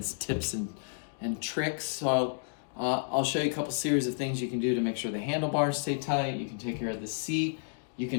tips and tricks. So I'll show you a couple series of things you can do to make sure the handlebars stay tight. You can take care of the seat. You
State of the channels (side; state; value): right; silent; digital silence